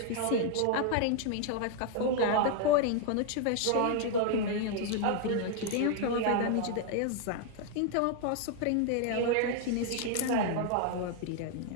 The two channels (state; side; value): different; both; correlation 0.00